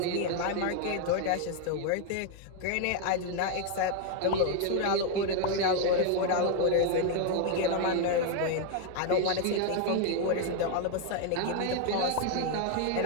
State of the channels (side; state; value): both; different; correlation 0.01